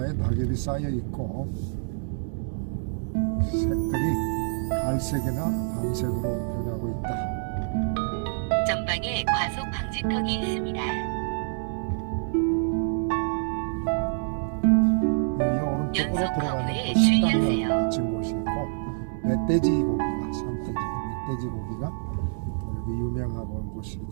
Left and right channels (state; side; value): silent; left; digital silence